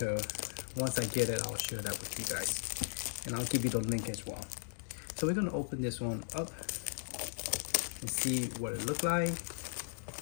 Once I get it, I'll share that with you guys, and I'll give you the link as well. So we're gonna open this one up and see what it looked like.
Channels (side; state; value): right; silent; digital silence